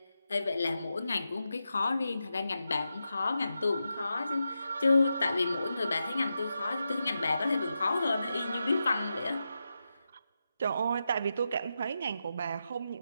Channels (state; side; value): inverted; both; correlation -0.88